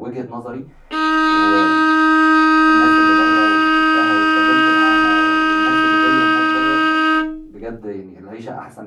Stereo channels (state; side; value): identical; both; correlation 1.00